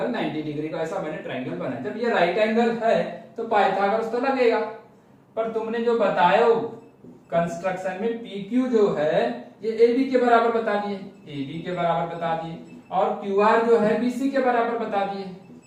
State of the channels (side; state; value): both; identical; correlation 1.00